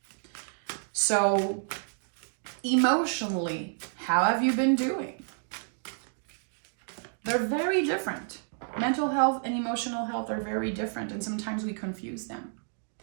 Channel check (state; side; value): silent; left; digital silence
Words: So emotionally, how have you been doing? They're very different. Mental health and emotional health are very different, and sometimes we confuse them.